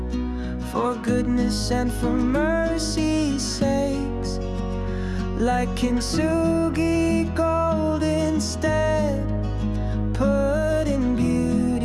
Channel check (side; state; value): both; identical; correlation 1.00